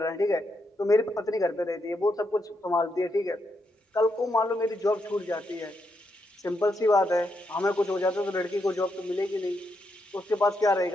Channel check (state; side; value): normal; both; correlation 0.81